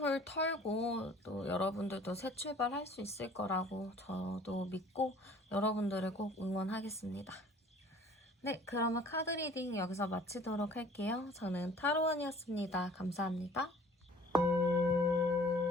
털고 또 여러분들도 새 출발할 수 있을 거라고 저도 믿고 여러분들을 꼭 응원하겠습니다. 네, 그러면 카드 리딩 여기서 마치도록 할게요. 저는 타로원이었습니다. 감사합니다.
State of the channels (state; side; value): normal; both; correlation 0.51